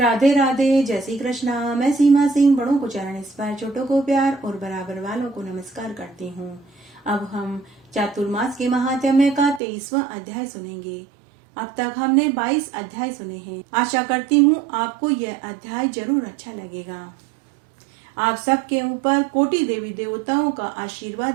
राधे, जय श्री कृष्णा। मैं सीमा सिंह बड़ों को चरण स्पर्श, छोटों को प्यार और बराबर वालों को नमस्कार करती हूँ। अब हम चातुर्मास के महात्म्य का 23वां अध्याय सुनेंगे। अब तक हमने 22 अध्याय सुने हैं। आशा करती हूँ आपको यह अध्याय जरूर अच्छा लगेगा। आप सबके ऊपर कोटि देवी देवताओं का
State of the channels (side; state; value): left; drops out; at 9.6 s